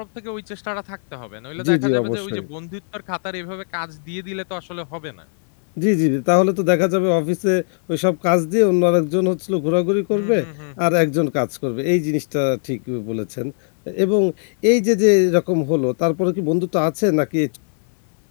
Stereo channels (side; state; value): right; silent; digital silence